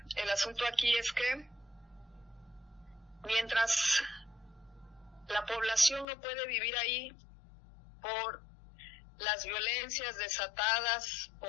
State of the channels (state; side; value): drops out; right; at 6.1 s